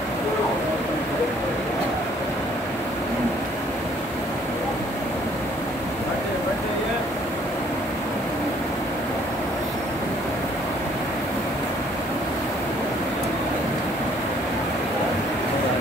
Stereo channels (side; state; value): both; normal; correlation 0.61